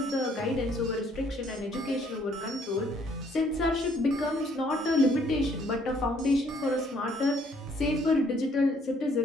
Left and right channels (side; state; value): both; normal; correlation 0.64